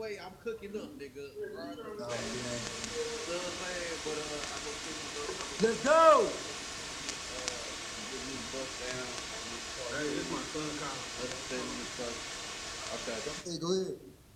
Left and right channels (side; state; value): both; identical; correlation 1.00